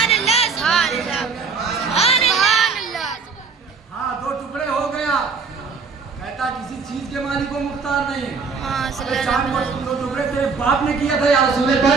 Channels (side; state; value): left; quieter; 5.0 dB